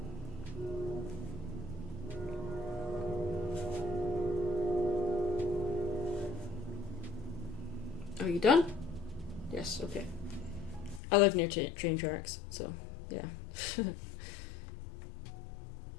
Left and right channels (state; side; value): drops out; right; at 11.0 s